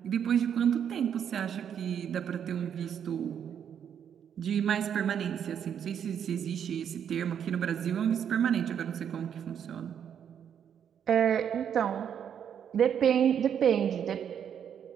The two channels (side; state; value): left; quieter; 8.5 dB